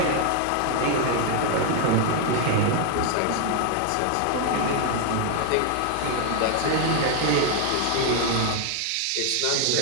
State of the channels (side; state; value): both; different; correlation 0.00